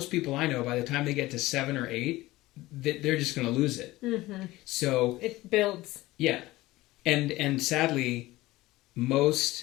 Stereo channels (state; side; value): quieter; right; 18.4 dB